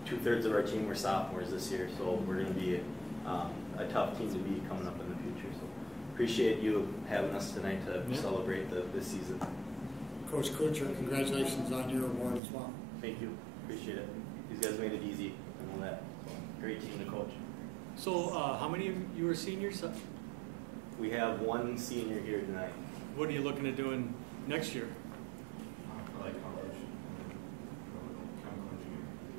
2/3 of our team were sophomores this year, so we're going to be a tough team to beat coming up in the future. So appreciate you having us tonight to celebrate this season. Coach Kuncher, congratulations on your award as well. Thank you. Appreciate it. These guys made it easy. I know that. So, great team to coach. So how many of you are seniors? We have one senior here tonight. What are you looking at doing next year?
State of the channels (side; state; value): left; drops out; at 12.4 s